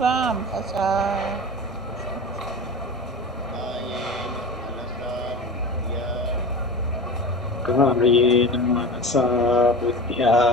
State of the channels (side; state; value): both; normal; correlation 0.31